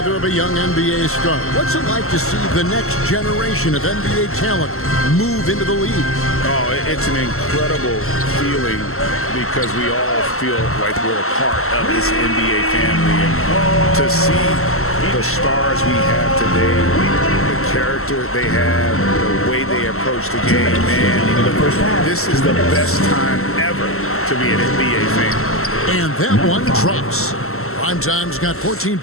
of a young NBA star. What's it like to see the next generation of NBA talent move into the league? Oh, it's an incredible feeling because we all feel like we're a part of this NBA family. And to see the stars we have today, the character they have, the way they approach the game, man, this is the best time ever to be an NBA fan. And that one drops. Primetime's got 14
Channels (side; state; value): right; late; 0.63 ms